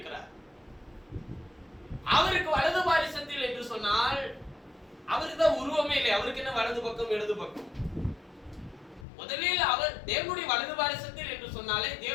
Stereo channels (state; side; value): drops out; right; at 9.1 s